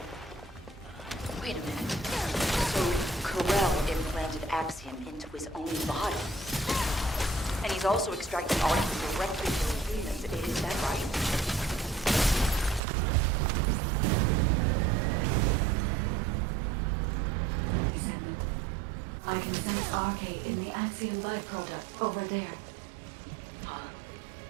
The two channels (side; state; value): left; drops out; at 12.8 s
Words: Wait a minute. So, Corell implanted Axiom into his own body. And he's also extracting art directly from Venus. Is that right? Descendant. I can sense RK in the Axiom byproduct over there. Huh?